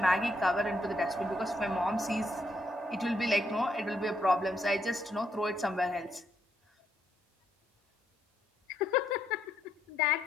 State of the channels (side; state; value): both; normal; correlation 0.76